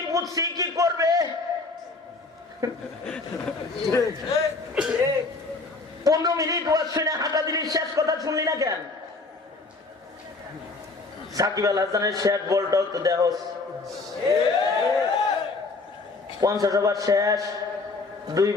বুঝছি, কি করবে? 15 মিনিট ওয়াজ শুনে হাঁটা দিলি, শেষ কথা শুনলি না কেন? সাকিব আল হাসানের শেষ বলটাও তো দেহ 50 ওভার শেষ, 2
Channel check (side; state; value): right; quieter; 3.7 dB